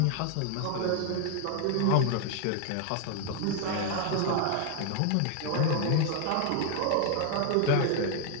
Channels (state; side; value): different; both; correlation 0.00